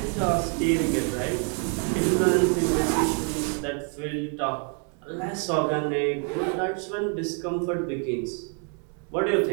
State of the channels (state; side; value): quieter; left; 39.3 dB